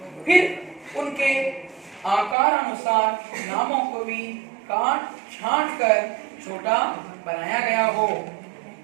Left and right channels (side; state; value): left; drops out; at 2.4 s